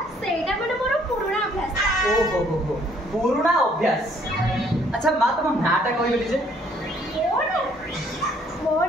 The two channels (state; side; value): normal; both; correlation 0.63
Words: माने मोर पुराना अभ्यास ओहो हो पुराना अभ्यास अच्छा माँ तुम नाटा कहले जे